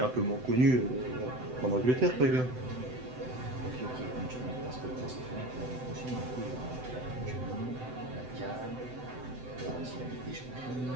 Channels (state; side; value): late; left; 7.9 ms